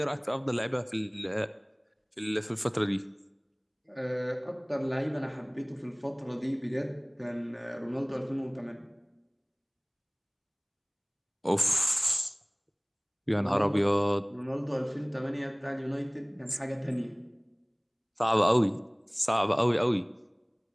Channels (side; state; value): both; identical; correlation 1.00